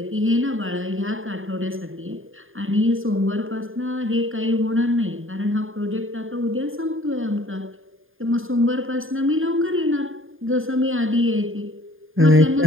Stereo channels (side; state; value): left; late; 0.59 ms